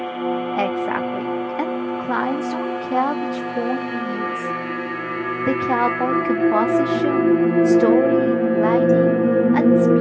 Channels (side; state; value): both; identical; correlation 1.00